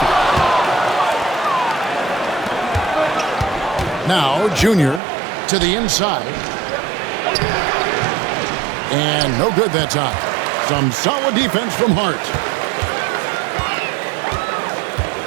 Now Junior to the inside. And no good that time. Some solid defense from Hart.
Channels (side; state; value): left; drops out; at 5.0 s